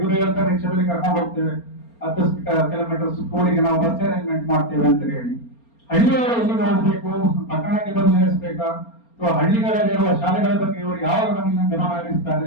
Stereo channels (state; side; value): late; right; 4.3 ms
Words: ಹೇಳ್ತಾರೆ ರಿಕ್ಷಾದಲ್ಲಿ ಕರ್ಕೊಂಡು ಹೋಗ್ತೇವೆ, 10 ಕಿಲೋಮೀಟರ್ ಸ್ಕೂಲಿಗೆ ನಾವು ಬಸ್ ಅರೇಂಜ್ಮೆಂಟ್ ಮಾಡ್ತೇವೆ ಅಂತ ಹೇಳಿ. ಹಳ್ಳಿಯವರು ಎಲ್ಲಿಗೆ ಹೋಗ್ಬೇಕು, ಪಟ್ಟಣಕ್ಕೆ ಬಂದು ನಿಲ್ಲಿಸಬೇಕಾ, ಅಥವಾ ಹಳ್ಳಿಗಳಲ್ಲಿರುವ ಶಾಲೆಗಳ ಬಗ್ಗೆ ಇವರು ಯಾವ ಗಮನ